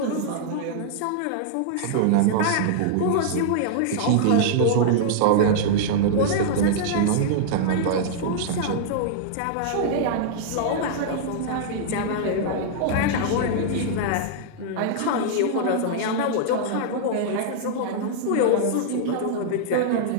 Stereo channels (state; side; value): different; both; correlation -0.01